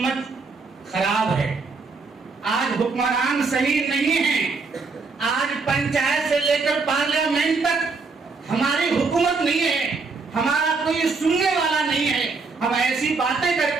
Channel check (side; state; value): left; quieter; 4.3 dB